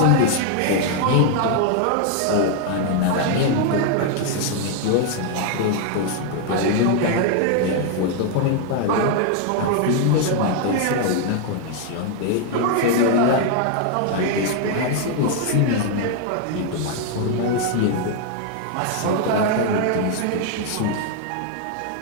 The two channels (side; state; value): both; different; correlation 0.00